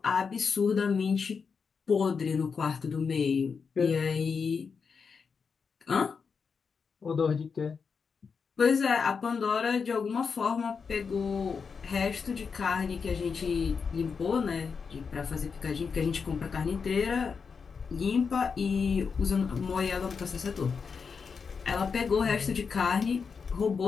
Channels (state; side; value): quieter; right; 5.6 dB